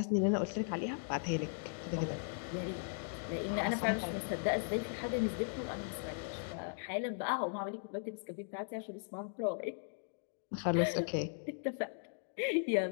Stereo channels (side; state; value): right; silent; digital silence